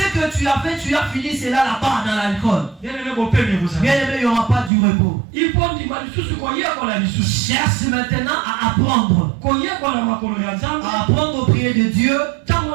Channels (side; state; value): left; drops out; at 4.7 s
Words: que tu as fait, tu as fini cela là-bas dans l'alcool. Bien aimé, il n'y aura pas du repos. Cherche maintenant à apprendre. À apprendre au prier de Dieu. Et